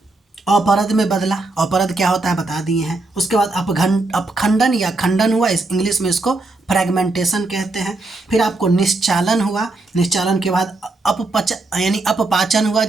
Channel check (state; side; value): quieter; left; 3.1 dB